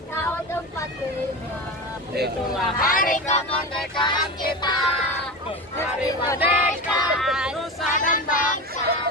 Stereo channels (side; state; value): both; normal; correlation 0.25